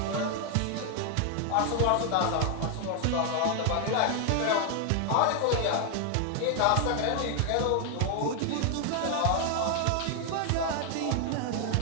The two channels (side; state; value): both; different; correlation 0.00